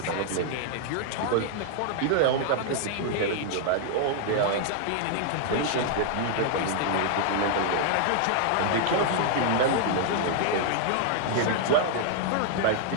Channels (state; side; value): different; both; correlation 0.00